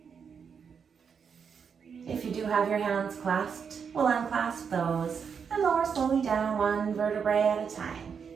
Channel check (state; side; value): quieter; left; 6.6 dB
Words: If you do have your hands clasped, we'll unclasp those and lower slowly down, one vertebrae at a time.